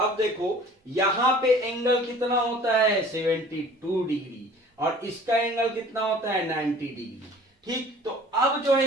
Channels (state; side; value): normal; both; correlation 0.48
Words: देखो यहां पे एंगल कितना होता है 72 डिग्री और इसका एंगल कितना होता है 90 डिग्री, ठीक। तो अब जो है